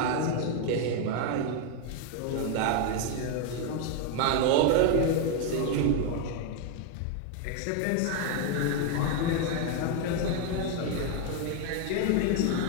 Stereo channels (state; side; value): different; both; correlation 0.01